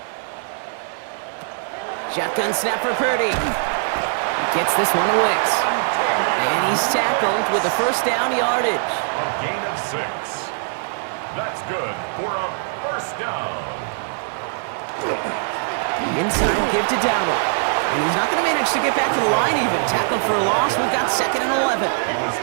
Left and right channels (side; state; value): left; silent; 59 dB below the other